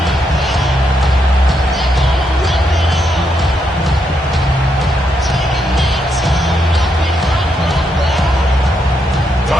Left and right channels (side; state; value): both; normal; correlation 0.79